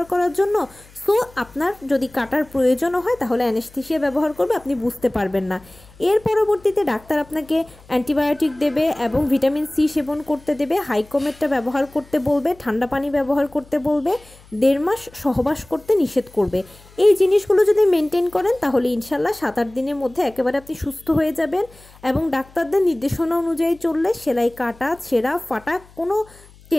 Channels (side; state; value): left; noise; hum, 25 dB below the sound